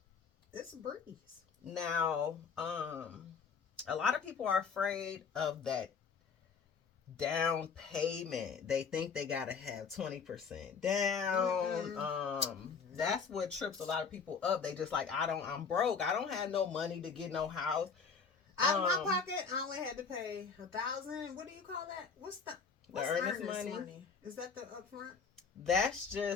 a breeze. Now, a lot of people are afraid of that down payment. They think they gotta have 20% down. That's what trips a lot of people up. They just like, I'm broke. I don't have no money to get no house. Out of my pocket, I only had to pay $1,000. What do you call that? What's earnest money? Is that the upfront? That's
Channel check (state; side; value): quieter; right; 5.7 dB